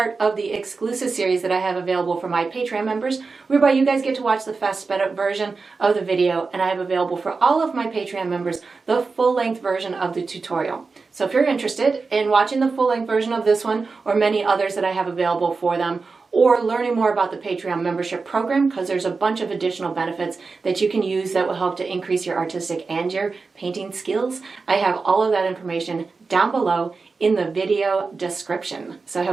of the exclusive series that I have available for my Patreon members, whereby you guys get to watch the fast sped up version of the video, and I have available for all of my Patreon members the full-length version of the tutorial. So if you're interested in watching the full-length version of this one or many others that I have available for them, or learning more about the Patreon membership program, because there's a bunch of additional benefits that you can use that will help to increase your artistic and your painting skills. I have all of that information down below in the video description. So I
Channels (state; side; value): quieter; left; 4.4 dB